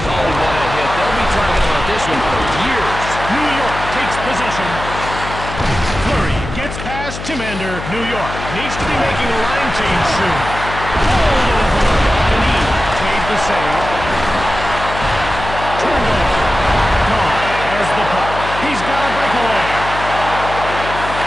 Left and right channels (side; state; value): left; noise; hum, 9 dB below the sound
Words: Oh, what a hit. They'll be talking about this one for years. New York takes possession. Fleury gets past Timander. New York needs to be making a line change soon. Hold over. Denis made the save. Turned over. Kahn has the puck. He's got a breakaway.